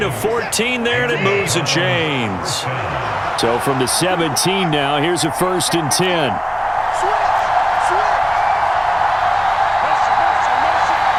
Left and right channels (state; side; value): identical; both; correlation 1.00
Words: of 14 there, and it moves the chains. So from the 17 now, here's a 1st and 10.